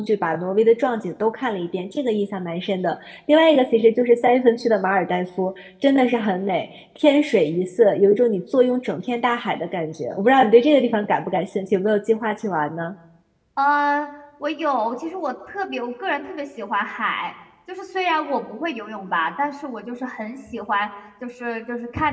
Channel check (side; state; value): both; identical; correlation 1.00